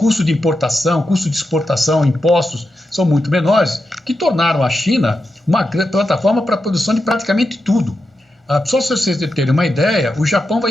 de importação, custo de exportação, impostos, são muito menores, que tornaram a China uma plataforma para a produção de praticamente tudo. Só se vocês terem uma ideia, o Japão vai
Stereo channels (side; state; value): both; normal; correlation 0.88